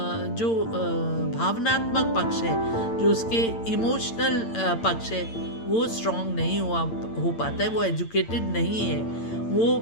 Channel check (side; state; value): right; late; 8.8 ms